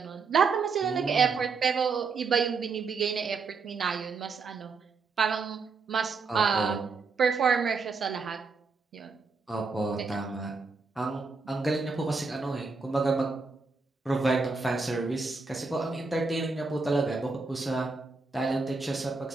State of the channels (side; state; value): left; quieter; 4.5 dB